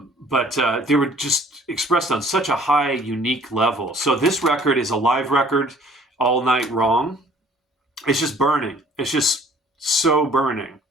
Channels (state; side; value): normal; both; correlation 0.55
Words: they were just expressed on such a high, unique level. So this record is a live record, All Night Wrong. It's just burning. It's just so burning.